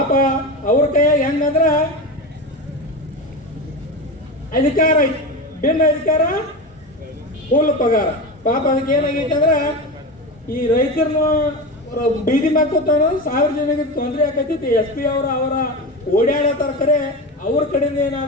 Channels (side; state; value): both; normal; correlation 0.22